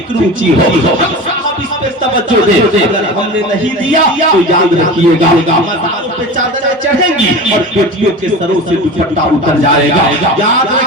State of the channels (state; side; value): normal; both; correlation 0.32